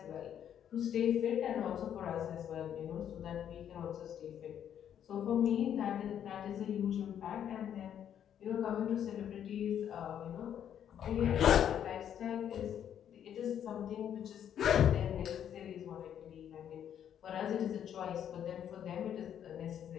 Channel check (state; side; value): quieter; right; 9.5 dB